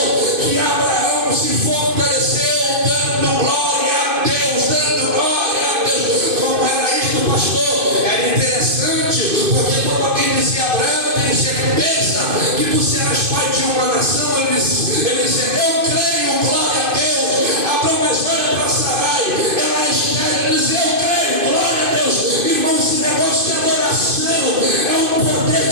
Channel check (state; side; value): late; left; 2.5 ms